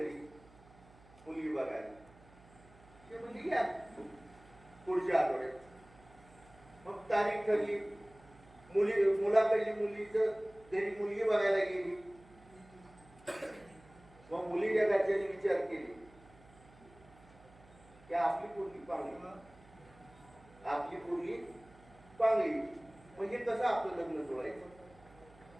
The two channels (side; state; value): right; noise; hum, 24 dB below the sound